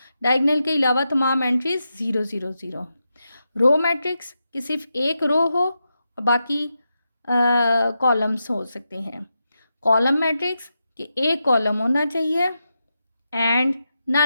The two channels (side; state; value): both; inverted; correlation -0.88